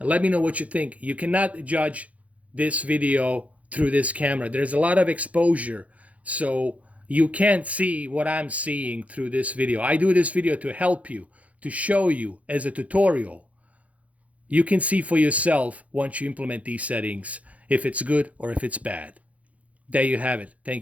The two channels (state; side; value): late; left; 0.067 ms